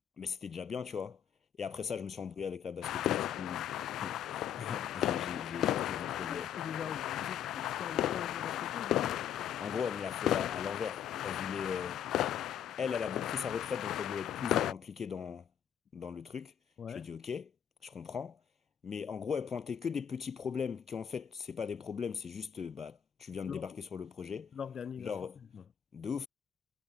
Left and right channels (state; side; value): quieter; right; 8.9 dB